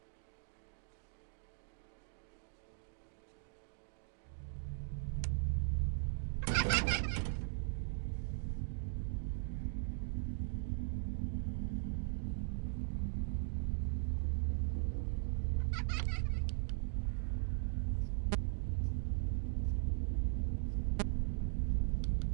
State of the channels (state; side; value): silent; left; digital silence